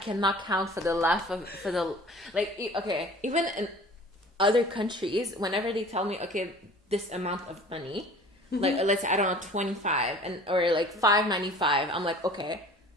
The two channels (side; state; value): both; normal; correlation 0.46